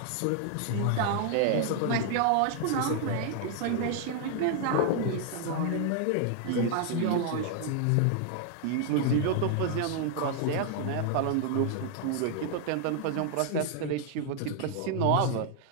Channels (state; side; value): different; both; correlation 0.00